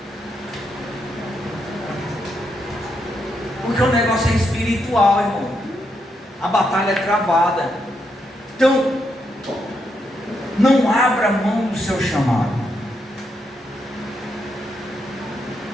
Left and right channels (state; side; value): normal; both; correlation 0.80